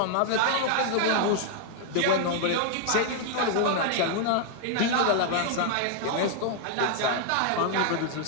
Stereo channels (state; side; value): different; both; correlation 0.00